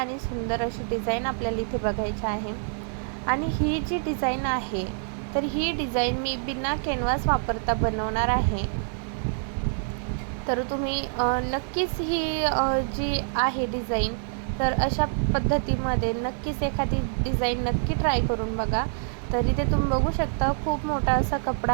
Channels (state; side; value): silent; left; digital silence